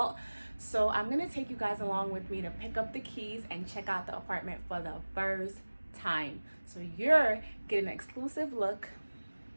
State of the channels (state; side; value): inverted; both; correlation -1.00